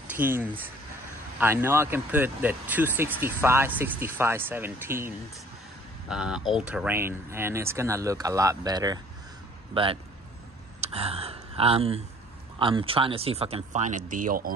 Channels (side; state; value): both; normal; correlation 0.53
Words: I know I can put the 265/65 17s all-terrain, and it's gonna look a lot better. But I'm trying to see if I can find a deal